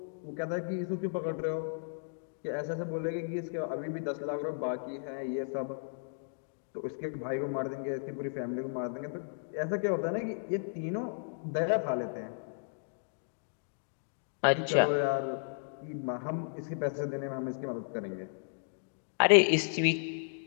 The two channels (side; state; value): right; silent; digital silence